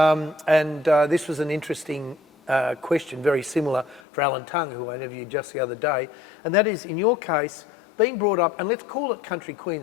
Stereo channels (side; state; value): right; drops out; at 4.0 s